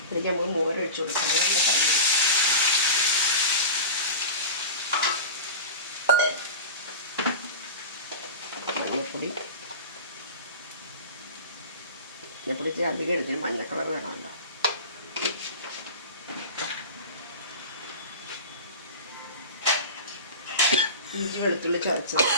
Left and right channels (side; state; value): both; inverted; correlation -0.30